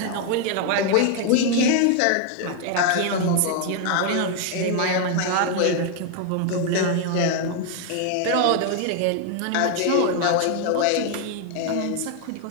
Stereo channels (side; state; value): both; different; correlation 0.01